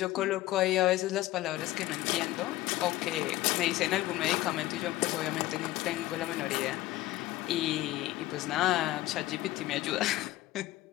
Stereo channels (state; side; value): quieter; right; 16.4 dB